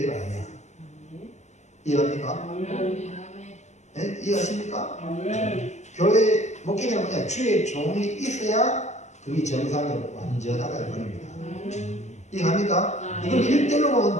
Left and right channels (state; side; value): late; right; 0.33 ms